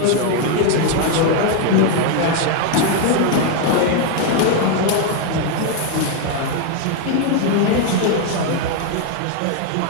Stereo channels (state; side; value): different; both; correlation 0.01